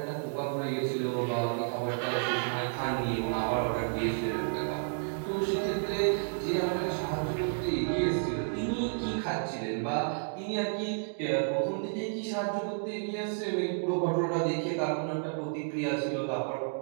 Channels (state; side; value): silent; left; digital silence